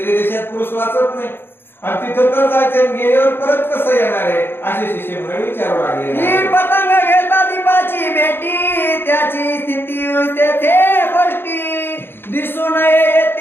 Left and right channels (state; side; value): late; right; 0.10 ms